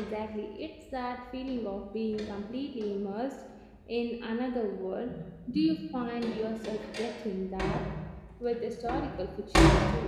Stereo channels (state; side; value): identical; both; correlation 1.00